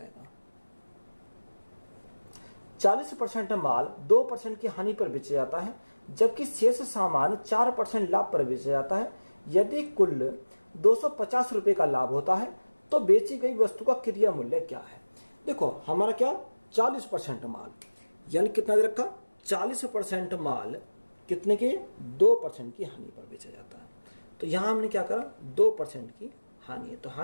40% माल 2% की हानि पर बेचा जाता है, जबकि शेष सामान 4% लाभ पर बेचा जाता है। यदि कुल 250 रुपए का लाभ होता है तो बेची गई वस्तु का क्रिया मूल्य क्या है? देखो हमारा क्या? 40% माल, यानी कितना दे रखा? 40% माल कितने के? 2% की हानि पर बेचा जाता है। तो यहाँ हमने क्या करा? 2% की हानि है, तो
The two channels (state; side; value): inverted; both; correlation -1.00